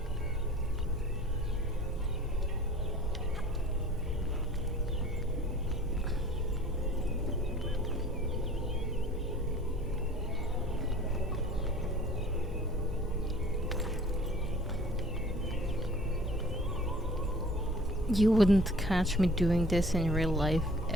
You wouldn't catch me doing this in real life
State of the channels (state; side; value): normal; both; correlation 0.48